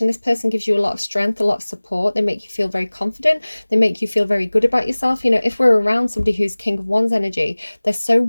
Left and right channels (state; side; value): inverted; both; correlation -1.00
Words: This person gives you a lot of strength, a lot of support. They make you feel very confident. They make you feel very good about yourself. You know, if we're around somebody who's King of Wands energy, they're so